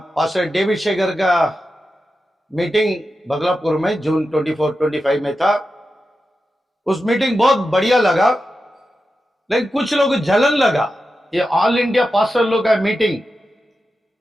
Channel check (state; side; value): normal; both; correlation 0.91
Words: David Shekhar का meeting बगलापुर में जून 24-25 में था। उस मीटिंग बहुत बढ़िया लगा, लेकिन कुछ लोग जलन लगा। ये ऑल इंडिया पास्टर लोग का मीटिंग